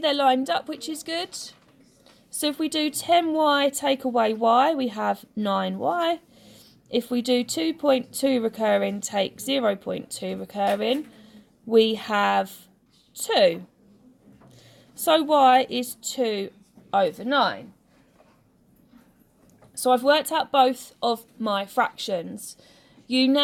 lined up, which is good. So if we do 10y take away y, we have 9y. If we do 2.2 recurring take 0.2 recurring, we have 2. So y is 2 over 9. So I've worked out both of my fractions. You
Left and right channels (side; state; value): both; identical; correlation 1.00